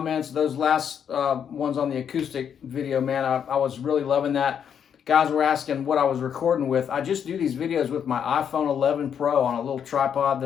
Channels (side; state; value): right; quieter; 8.1 dB